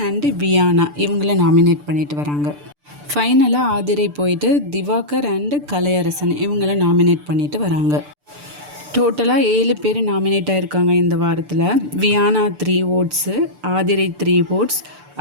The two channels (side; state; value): left; late; 6.8 ms